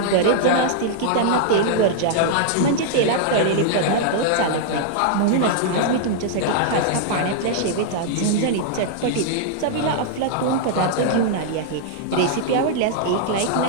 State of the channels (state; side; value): different; both; correlation -0.01